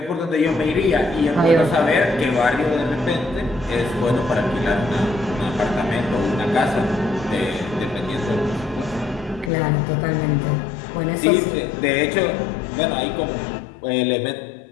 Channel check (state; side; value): drops out; right; at 9.5 s